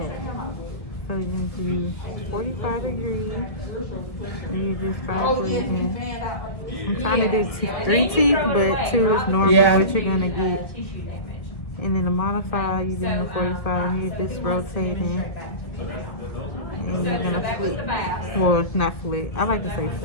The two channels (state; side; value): late; right; 1.8 ms